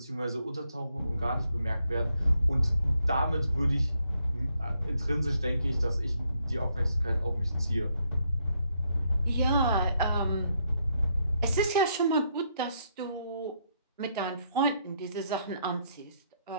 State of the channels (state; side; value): inverted; both; correlation -0.75